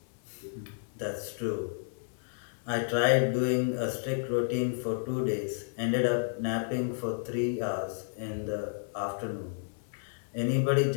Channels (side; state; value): right; silent; 57 dB below the other